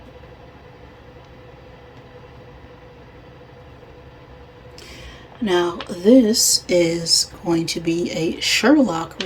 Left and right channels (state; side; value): identical; both; correlation 1.00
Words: Now, this is going to be a Sherlock